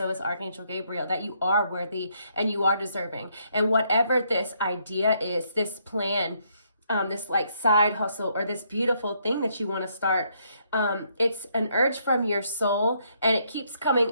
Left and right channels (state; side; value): inverted; both; correlation -0.72